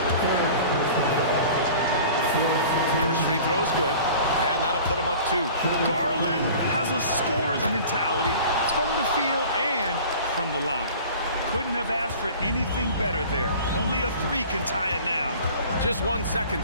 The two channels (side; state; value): both; inverted; correlation -0.43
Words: First free throw is good, and that'll put him up 2. Garland has a scorer's mentality from the field and from the line. Couldn't have asked for anything better there. Only a 3 can tie it now. Just 1 second